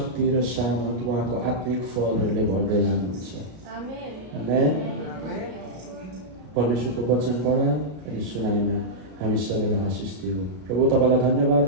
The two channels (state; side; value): late; left; 33 ms